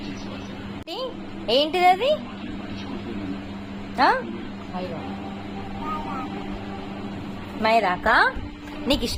ఏంటిది అది? మైదాకా? నీకు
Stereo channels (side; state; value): both; identical; correlation 1.00